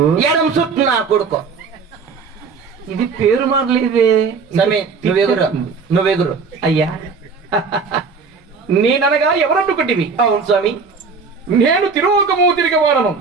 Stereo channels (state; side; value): quieter; left; 5.0 dB